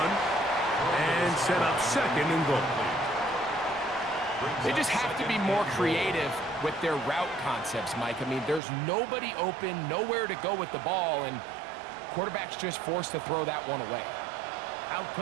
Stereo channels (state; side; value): drops out; left; at 8.6 s